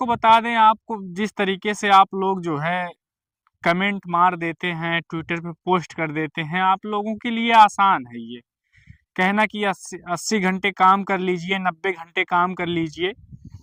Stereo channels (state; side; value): identical; both; correlation 1.00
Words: बता दें, आपको जिस तरीके से आप लोग जो है कमेंट मार देते हैं, ट्विटर पे पोस्ट कर देते हैं, आप लोगों के लिए आसान है ये कहना कि 80 घंटे काम कर लीजिए, 90 घंटे काम कर लीजिए।